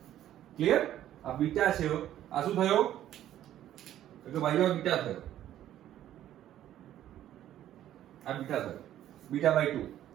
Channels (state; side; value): quieter; left; 12.1 dB